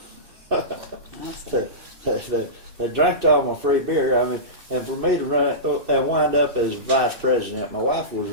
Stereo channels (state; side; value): late; left; 2.6 ms